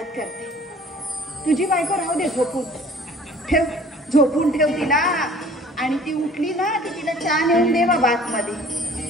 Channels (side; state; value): both; normal; correlation 0.50